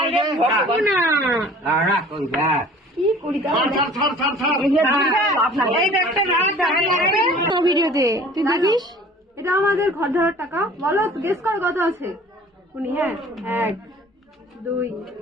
ভগবানা, কি করি ভিডিওতে তুই দেখিস। এটা আমাদের ঘর ধরার টাকা। বলো গেস কর কত আছে। উনি হ্যাঁ 1 2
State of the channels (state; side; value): normal; both; correlation 0.48